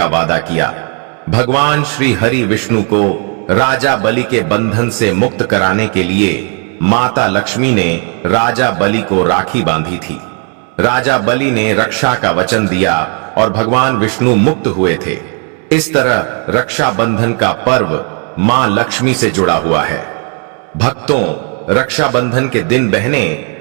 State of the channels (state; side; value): quieter; left; 39.8 dB